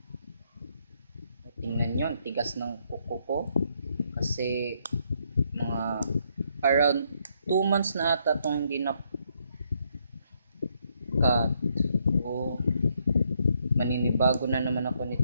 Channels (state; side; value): inverted; both; correlation -0.73